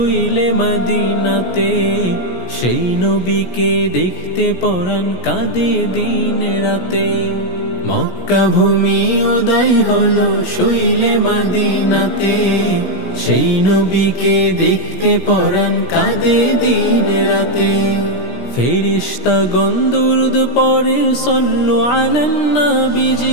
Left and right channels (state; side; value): late; right; 17 ms